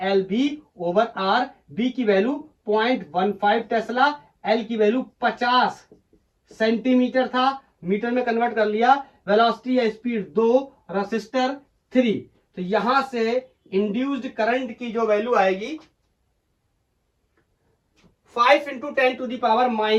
over R, B की वैल्यू 0.15 टेस्ला, एल की वैल्यू 50 सेंटीमीटर था, मीटर में कन्वर्ट कर लिया, वेलोसिटी या स्पीड 2, रेसिस्टर 3। तो यहां से इंड्यूस्ड करंट की जो वैल्यू आएगी 5 ×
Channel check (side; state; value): both; identical; correlation 1.00